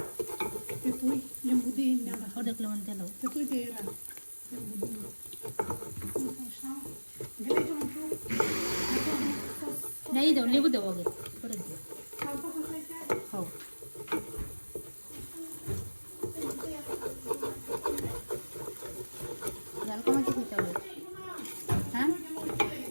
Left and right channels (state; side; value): inverted; both; correlation -1.00